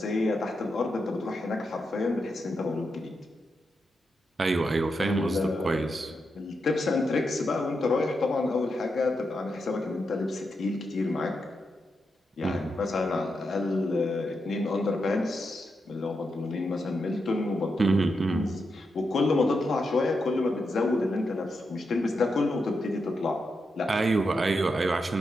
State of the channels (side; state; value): both; normal; correlation 0.85